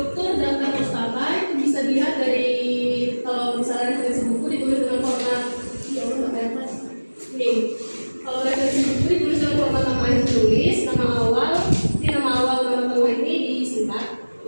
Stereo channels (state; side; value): inverted; both; correlation -1.00